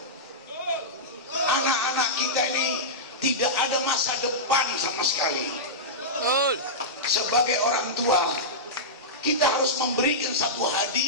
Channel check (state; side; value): normal; both; correlation -0.13